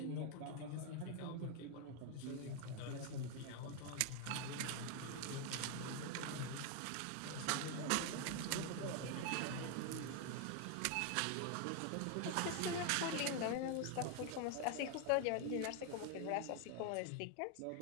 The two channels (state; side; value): different; both; correlation 0.01